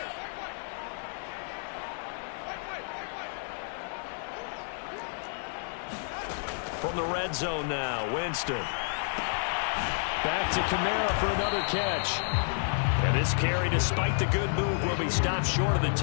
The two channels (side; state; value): right; silent; digital silence